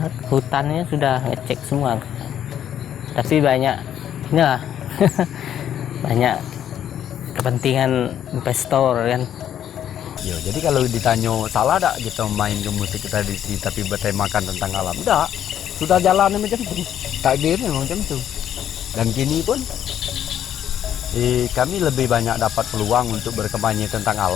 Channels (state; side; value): quieter; right; 10.2 dB